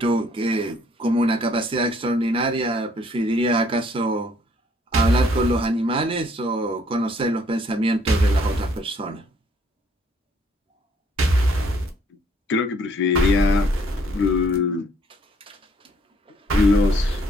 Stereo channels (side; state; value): both; normal; correlation 0.64